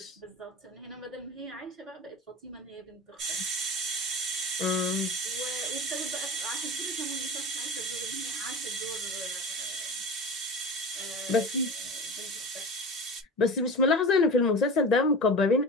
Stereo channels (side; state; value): both; normal; correlation 0.32